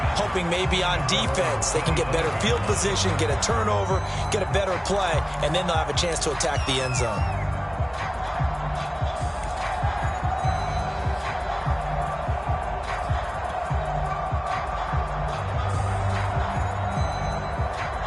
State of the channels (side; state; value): both; identical; correlation 1.00